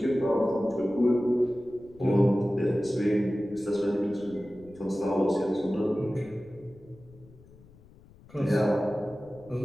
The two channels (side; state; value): left; noise; rumble, 24 dB below the sound